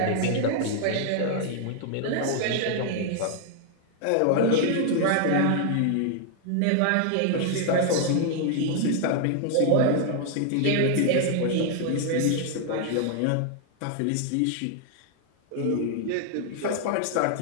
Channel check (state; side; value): different; both; correlation 0.00